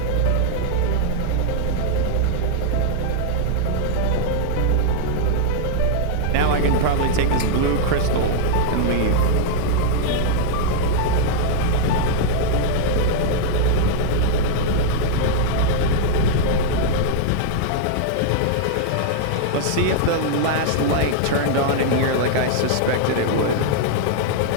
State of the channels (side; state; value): both; different; correlation -0.01